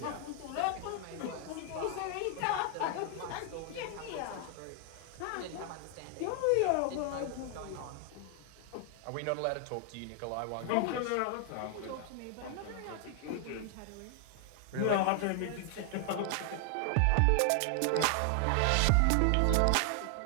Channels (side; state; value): both; different; correlation 0.00